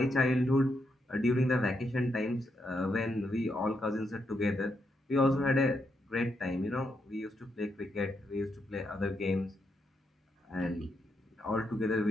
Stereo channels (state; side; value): normal; both; correlation 0.81